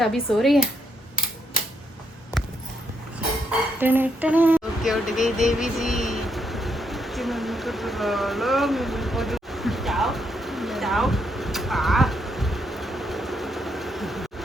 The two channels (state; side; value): normal; both; correlation 0.77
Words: अभी सो रही है। ओके, उठ गई देवी जी।